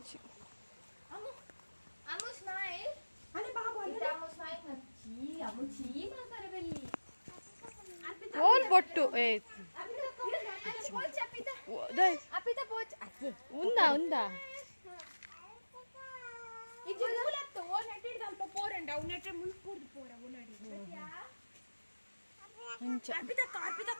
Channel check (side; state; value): both; inverted; correlation -1.00